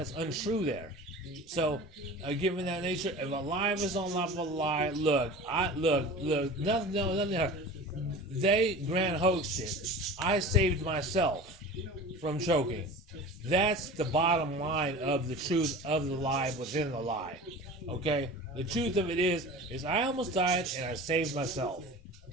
So, given that nature, if a lie is on top of a lie, look, nothing. They grand hoaxed it. I saved myself from choking. That's the bottom line of the truth of the lie within the lie. Okay? The truth of it is I almost died and I saved myself.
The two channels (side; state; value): both; normal; correlation 0.36